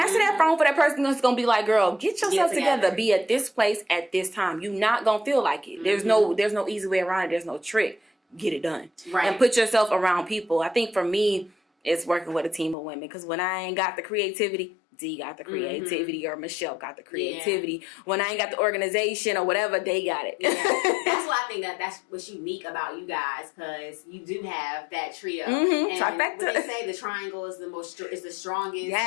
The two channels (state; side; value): drops out; right; at 12.8 s